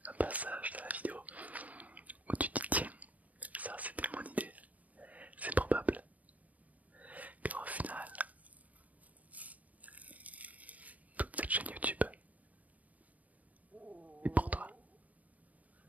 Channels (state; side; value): late; left; 0.073 ms